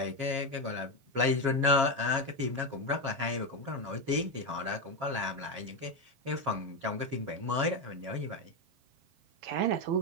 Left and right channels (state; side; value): late; left; 7.4 ms